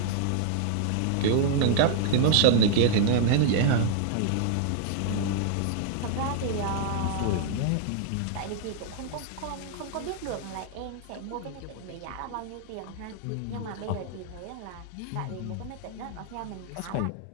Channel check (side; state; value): both; different; correlation -0.01